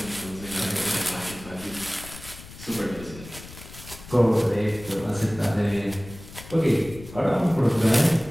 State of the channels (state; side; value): noise; left; rumble, 16 dB below the sound